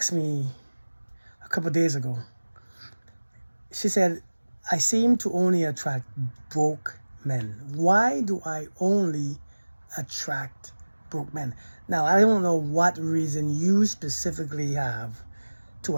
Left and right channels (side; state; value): both; inverted; correlation -1.00